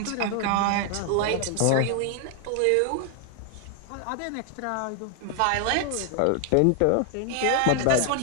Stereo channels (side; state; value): both; different; correlation 0.00